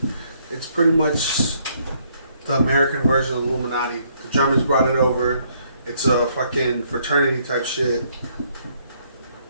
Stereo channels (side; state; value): both; inverted; correlation -0.69